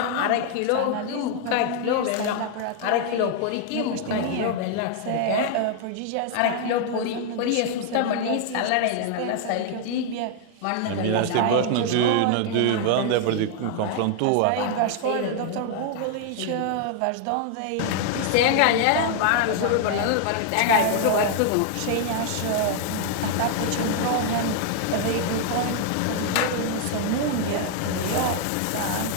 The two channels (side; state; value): both; different; correlation 0.00